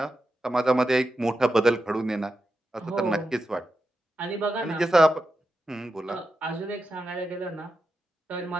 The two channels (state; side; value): normal; both; correlation 0.89